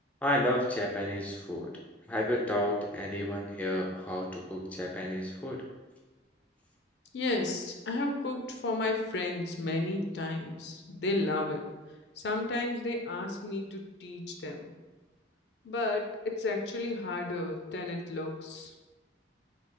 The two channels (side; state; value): both; normal; correlation 0.38